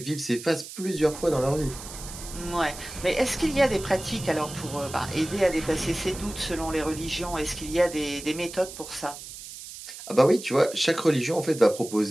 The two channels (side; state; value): right; noise; hiss, 13 dB below the sound